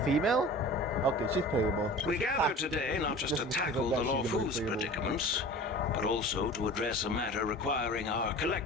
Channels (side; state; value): both; normal; correlation 0.39